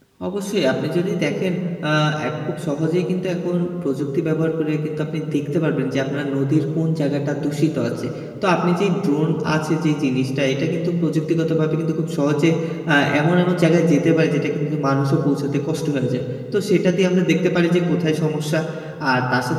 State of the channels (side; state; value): both; identical; correlation 1.00